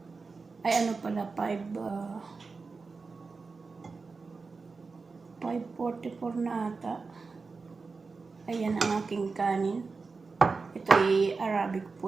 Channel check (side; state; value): left; quieter; 4.4 dB